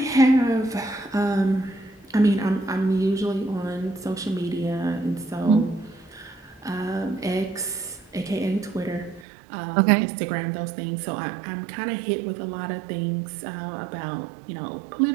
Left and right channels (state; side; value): drops out; left; at 9.2 s